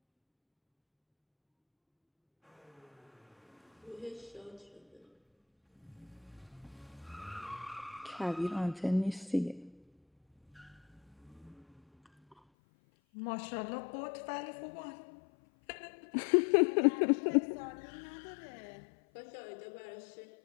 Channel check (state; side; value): drops out; right; at 12.4 s